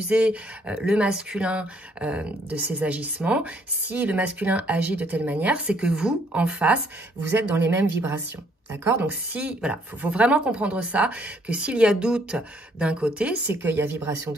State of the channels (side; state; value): both; normal; correlation 0.66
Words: le masculin de ses agissements. Si le masculin agit de telle manière, c'est que vous, en face, vous êtes dans les mêmes vibrations. D'accord? Donc, voilà, faut vraiment comprendre ça, que s'il y a doute d'un côté, c'est qu'il y a vibration